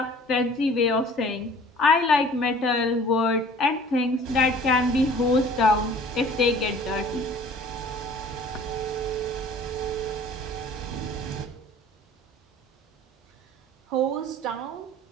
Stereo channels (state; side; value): normal; both; correlation 0.49